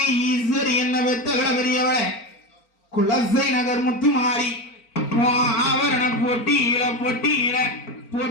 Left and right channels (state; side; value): late; right; 4.4 ms